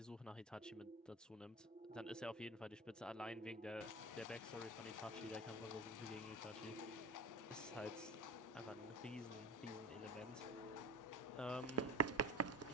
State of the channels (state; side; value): normal; both; correlation 0.27